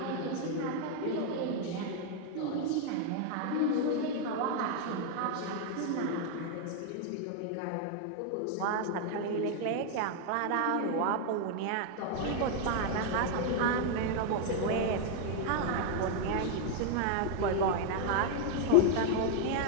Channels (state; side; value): different; both; correlation 0.00